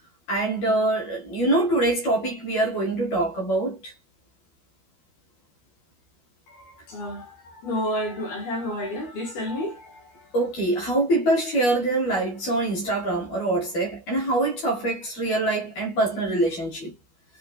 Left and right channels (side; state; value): right; late; 12 ms